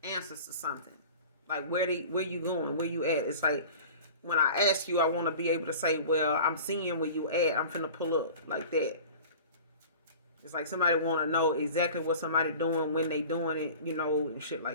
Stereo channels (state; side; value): inverted; both; correlation -0.40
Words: answers to something. Like where you going? Where you at? It's like when I ask you, I want to be able to say, well, I'm seeing where you at. I'm finna pull up like that. It's like somebody want to know exactly what somebody doing, when they doing it, and shit